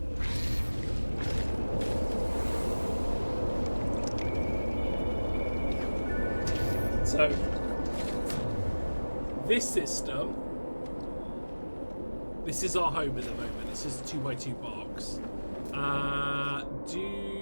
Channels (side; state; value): both; inverted; correlation -1.00